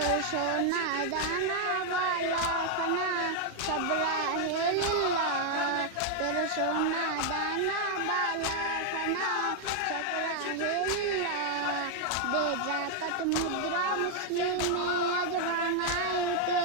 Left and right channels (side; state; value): both; different; correlation 0.00